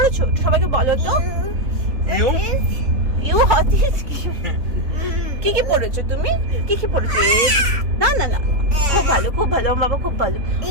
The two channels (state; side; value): late; left; 3.5 ms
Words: সবাইকে বলো তো। ইউ হতিস কি কি পড়েছো তুমি? কি কি পড়েছো? না না না, খুব ভালো বাবা, খুব ভালো।